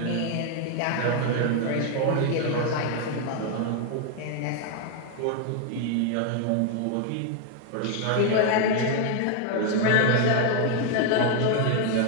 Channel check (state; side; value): different; both; correlation 0.00